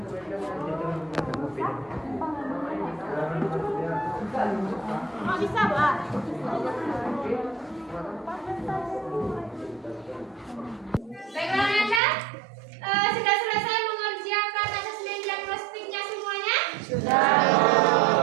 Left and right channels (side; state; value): left; drops out; at 12.0 s